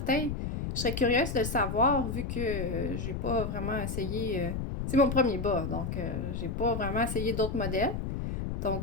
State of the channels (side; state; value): left; noise; rumble, 3 dB below the sound